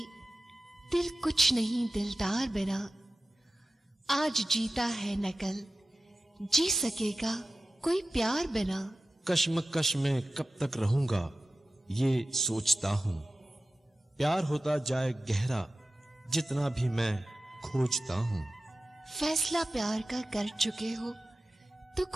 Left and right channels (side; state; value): both; normal; correlation 0.95